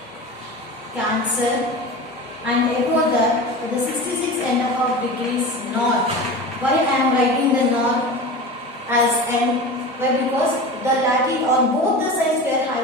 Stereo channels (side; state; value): both; normal; correlation 0.31